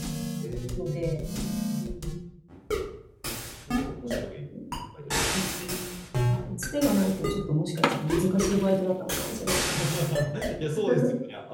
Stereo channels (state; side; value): identical; both; correlation 1.00